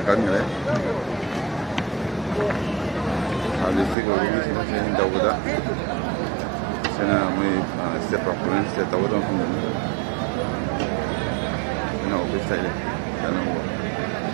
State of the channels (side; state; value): left; drops out; at 4.0 s